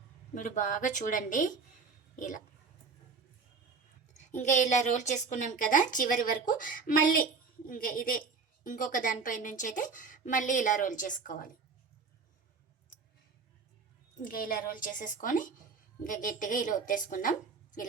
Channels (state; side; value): quieter; left; 4.9 dB